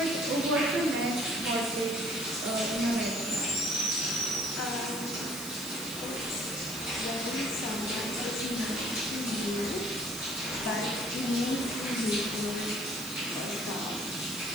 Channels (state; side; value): noise; right; hiss, 10 dB below the sound